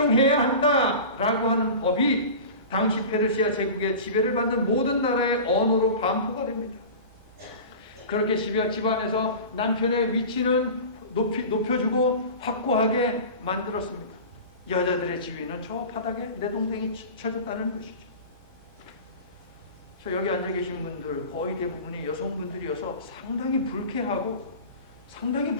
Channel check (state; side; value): inverted; both; correlation -0.34